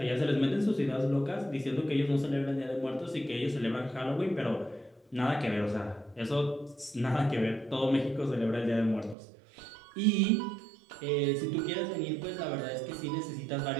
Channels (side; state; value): left; drops out; at 9.2 s